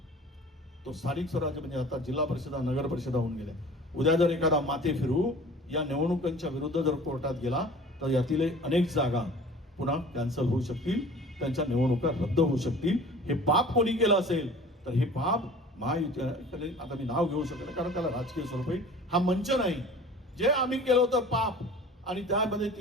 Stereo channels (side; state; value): both; normal; correlation 0.44